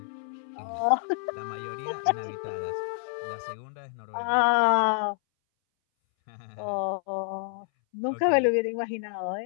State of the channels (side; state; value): right; silent; 59 dB below the other